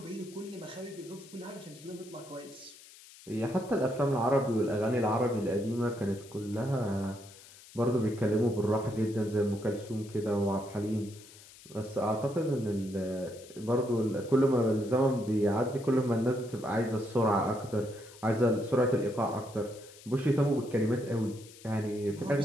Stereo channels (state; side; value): noise; left; hiss, 20 dB below the sound